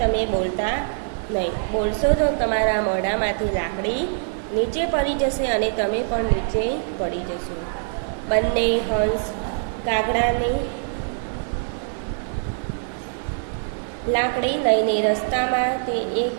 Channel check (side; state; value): left; silent; 63 dB below the other